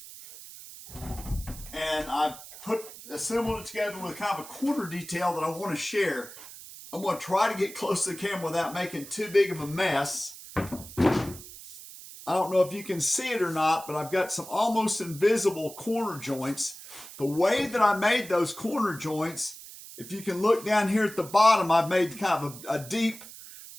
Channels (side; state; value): right; noise; hiss, 15 dB below the sound